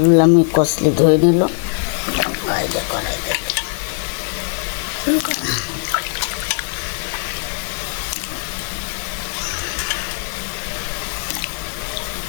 আমি কষলে ধুয়ে নিল।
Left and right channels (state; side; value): silent; right; digital silence